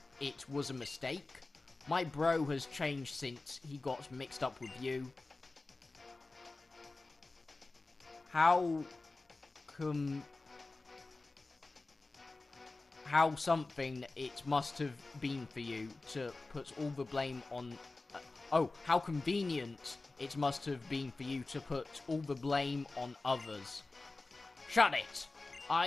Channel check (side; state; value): right; quieter; 3.4 dB